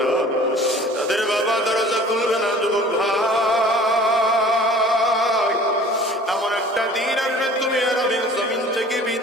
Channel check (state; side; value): normal; both; correlation 0.47